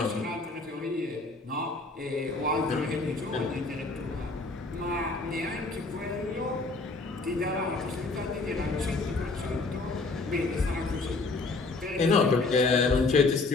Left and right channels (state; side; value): quieter; right; 3.6 dB